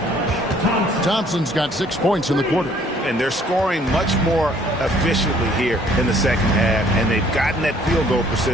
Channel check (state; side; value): normal; both; correlation 0.60